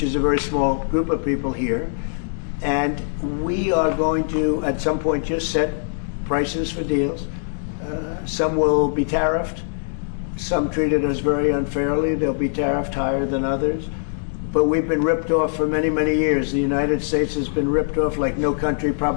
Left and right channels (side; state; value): right; silent; digital silence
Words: is a very small group of people here. And we are going to, at some point, just set prices for deals. Some will be tariffed. Some treated us very unfairly. They'll be tariffed higher than others. But we've been ripped off for many, many years. The United States has been ripped off like no country